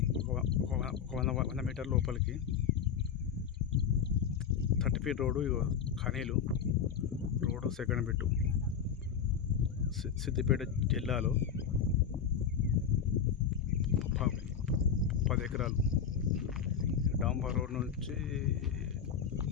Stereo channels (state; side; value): quieter; right; 7.4 dB